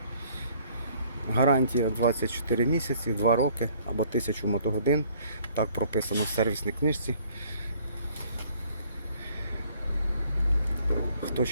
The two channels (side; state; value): both; inverted; correlation -0.59